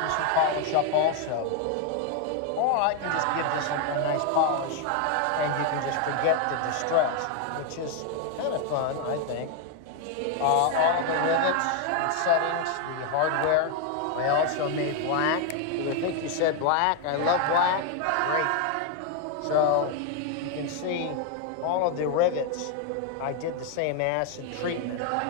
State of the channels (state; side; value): different; both; correlation 0.01